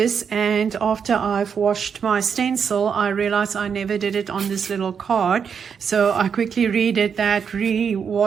and after I've washed my stencil, I realized I never did it on this little card. So I quickly redid that,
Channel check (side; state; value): left; quieter; 6.8 dB